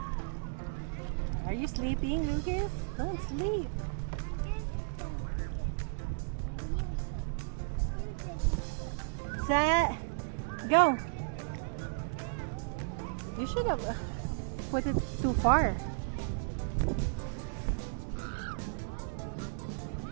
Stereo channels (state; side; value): silent; left; digital silence